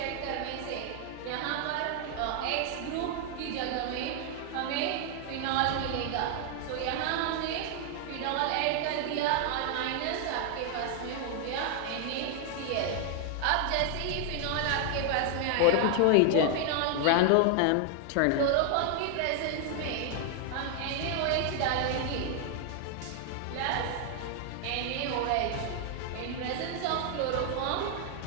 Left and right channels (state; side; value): different; both; correlation 0.00